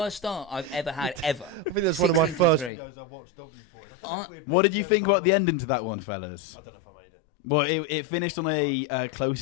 start I've ever had ever. I think that's one of my 16 first 3. videos I watched of you boys. I don't know if we had. What met did you them think by about the not. ending to that one, fellas? I don't know if I made it. Well, it finished on a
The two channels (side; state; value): right; drops out; at 2.7 s